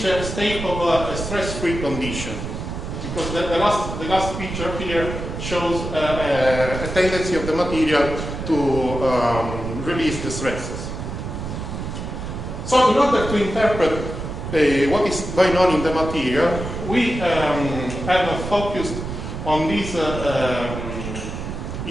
a state of a stress-free condition. because the last picture here shows a tendency of the material to release the stresses. So in order to interpret what is going on in the material, we have focused on this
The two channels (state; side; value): noise; right; rumble, 6 dB below the sound